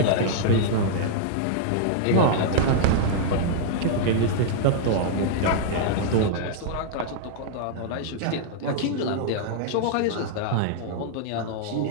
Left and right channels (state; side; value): different; both; correlation -0.01